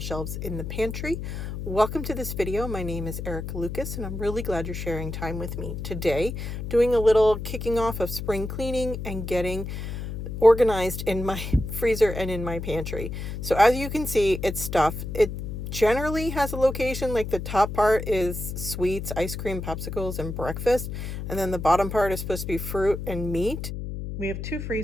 in the pantry. Welcome to this video. My name is Erica Lucas, and I'm really glad you're sharing time with me today, doing a little kicking off of spring cleaning and getting organized in my freezer and in my pantry. So as you can see, it's stuff. It generally has a location, like the top part is sweets, ice cream, popsicles, and breakfast, and then the bottom part is supposed to be fruit and meat. We have two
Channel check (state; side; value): noise; left; hum, 6 dB below the sound